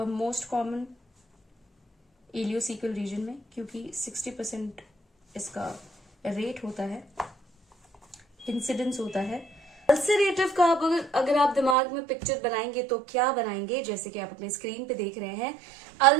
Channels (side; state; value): left; drops out; at 11.8 s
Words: most common ileocaecal region में, क्योंकि 60% इसका रेट होता है, इंसिडेंस होता है। अल्सरेटिव का अगर आप दिमाग में पिक्चर बनाएंगे तो क्या बनाएंगे, जैसे कि आप अपने स्क्रीन पे देख रहे हैं,